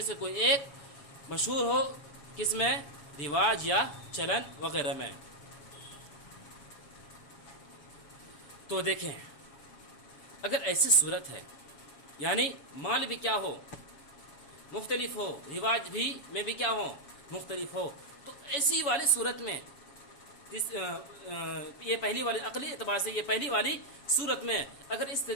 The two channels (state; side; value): late; right; 7.2 ms